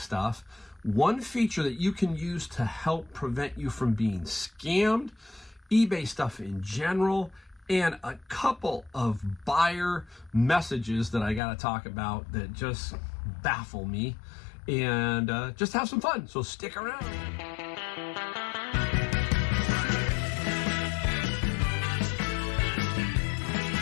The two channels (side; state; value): right; drops out; at 11.4 s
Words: one feature that you can use to help prevent you from being scammed, eBay stuff in general, and a couple of buyer messages that I got to talk about that just baffle me, and just have some fun. So stick around.